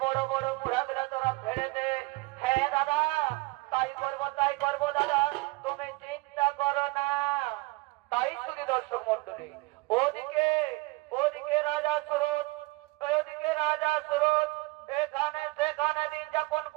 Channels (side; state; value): left; quieter; 23.9 dB